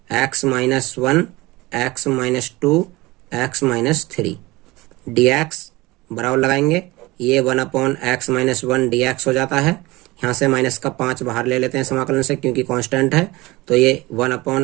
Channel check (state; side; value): quieter; left; 21.0 dB